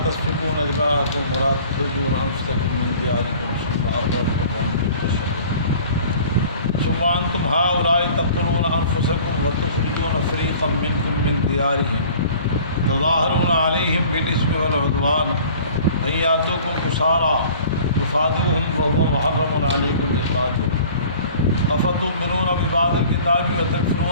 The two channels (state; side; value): inverted; both; correlation -0.47